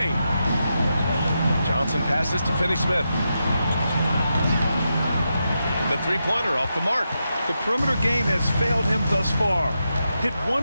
Johnson passes to Finney-Smith. The 3-pointer off the mark. The perimeter game has failed him thus far. Hit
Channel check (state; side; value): inverted; both; correlation -0.87